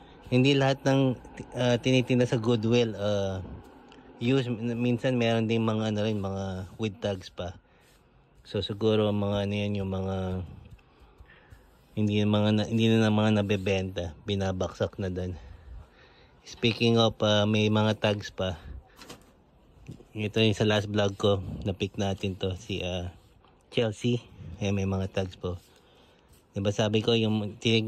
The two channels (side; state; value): both; identical; correlation 1.00